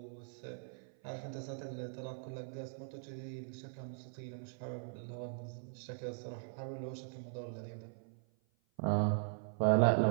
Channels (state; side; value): silent; left; 51 dB below the other